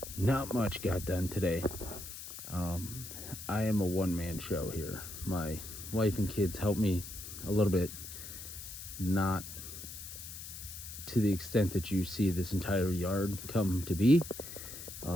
Not much got done today. I am a one-man show here. My wife and kids help me a little bit, not to the extent that you see this entire yard come to be.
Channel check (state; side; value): noise; left; hiss, 11 dB below the sound